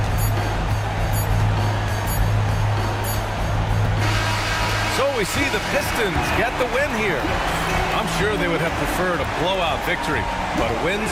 So we see the Pistons get the win here. I'm sure they would have preferred a blowout victory, but a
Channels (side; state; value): both; identical; correlation 1.00